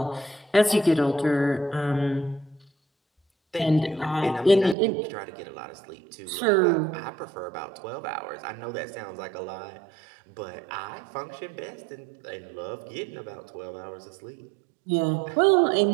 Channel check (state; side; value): drops out; left; at 4.8 s